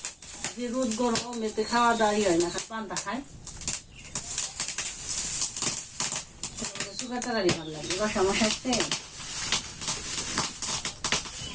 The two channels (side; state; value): both; identical; correlation 1.00